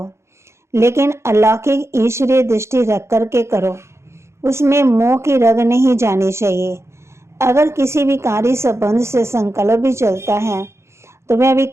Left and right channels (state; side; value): late; left; 0.13 ms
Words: लेकिन अलौकिक ईश्वरीय दृष्टि रख कर के करो। उसमें मोह की रग नहीं जानी चाहिए। अगर किसी विकारी संबंध से संकल्प भी चलता है तो वह भी